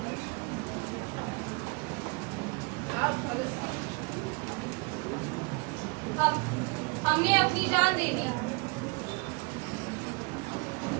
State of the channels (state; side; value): quieter; left; 29.5 dB